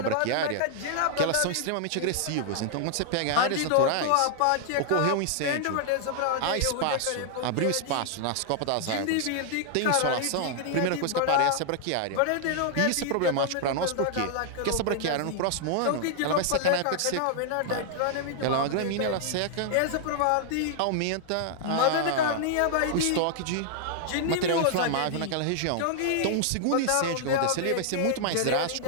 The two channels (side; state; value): both; different; correlation -0.01